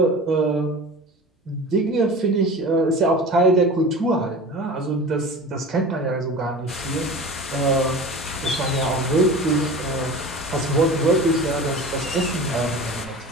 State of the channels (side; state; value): both; normal; correlation 0.36